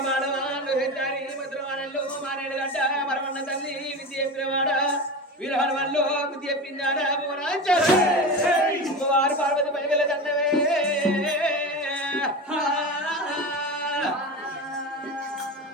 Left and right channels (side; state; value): both; normal; correlation 0.26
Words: మరమన్న తల్లి విద్య చెప్పినవాడ వీరహన్ వల్ల విద్య చెప్పిందాడా వారు పార్వతి పైగల దండవే